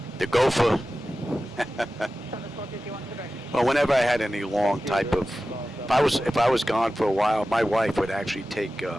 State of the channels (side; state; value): both; normal; correlation 0.94